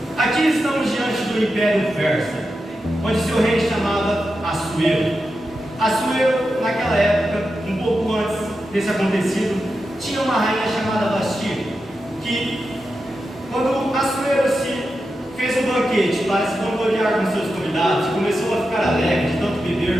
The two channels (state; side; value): normal; both; correlation 0.89